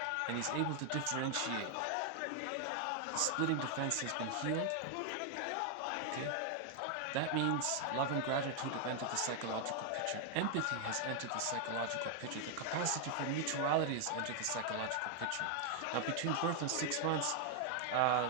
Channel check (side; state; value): both; different; correlation 0.00